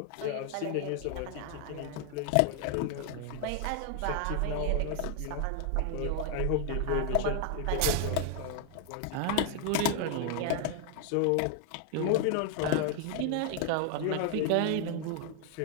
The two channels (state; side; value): different; both; correlation 0.00